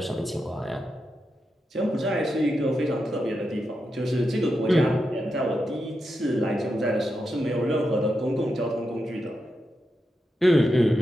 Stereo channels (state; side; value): normal; both; correlation 0.87